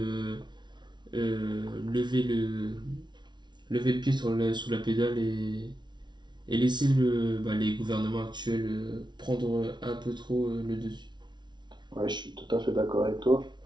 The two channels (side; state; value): left; late; 0.21 ms